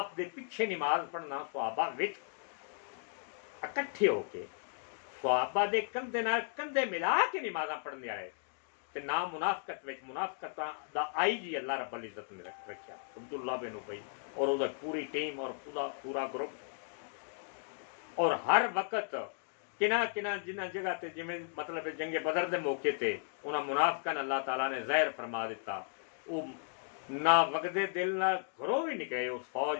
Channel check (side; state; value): right; silent; digital silence